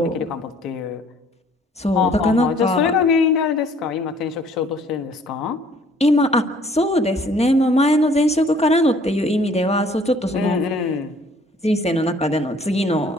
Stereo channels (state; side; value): normal; both; correlation 0.58